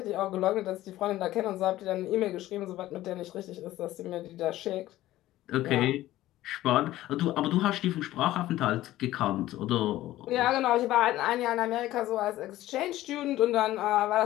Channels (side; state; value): right; quieter; 15.3 dB